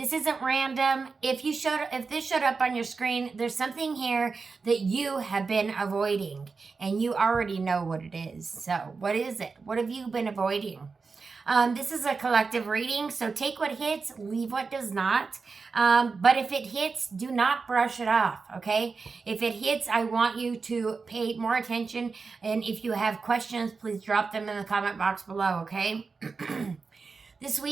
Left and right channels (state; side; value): quieter; left; 4.6 dB